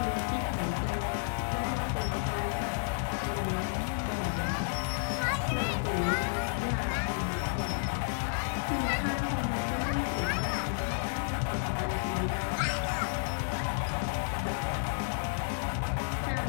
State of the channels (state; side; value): silent; right; digital silence